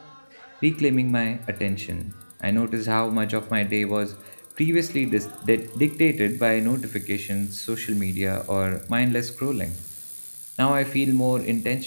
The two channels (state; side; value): inverted; both; correlation -1.00